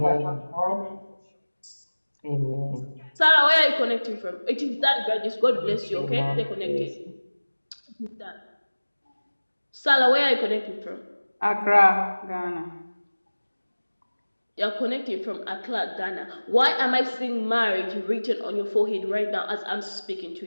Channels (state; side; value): inverted; both; correlation -1.00